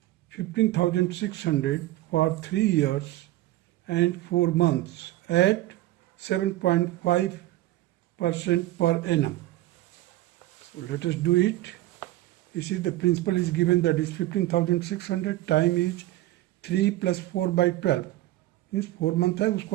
15,600 for 3 years and 4 months at 7.5% per annum. So let us do it. You see the principal is given, that is 15,600, time is 3 plus 4 by 12. Means 4 month है,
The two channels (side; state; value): left; quieter; 16.3 dB